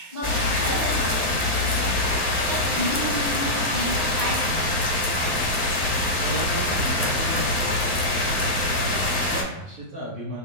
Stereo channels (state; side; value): late; left; 11 ms